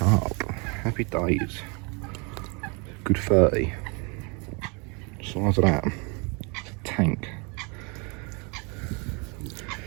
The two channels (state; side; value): quieter; left; 31.7 dB